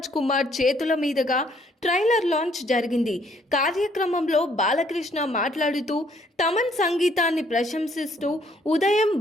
కుమార్ చేతుల మీదుగా ట్రైలర్ లాంచ్ జరిగింది. కార్యక్రమంలో బాలకృష్ణ మాట్లాడుతూ తమన్ సంగీతాన్ని ప్రశంసిస్తూ ఉదయం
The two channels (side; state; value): both; normal; correlation 0.65